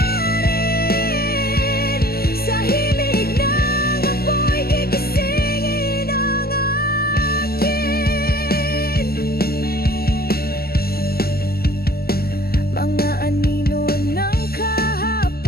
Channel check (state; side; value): late; right; 0.45 ms